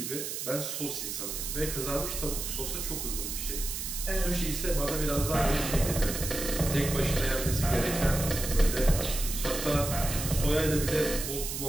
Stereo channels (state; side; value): noise; right; hiss, 5 dB below the sound